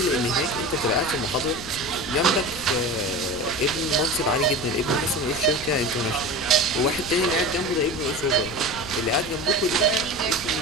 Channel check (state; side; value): noise; left; rumble, 14 dB below the sound